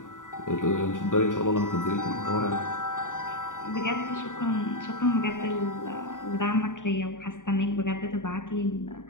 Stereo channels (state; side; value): late; right; 0.88 ms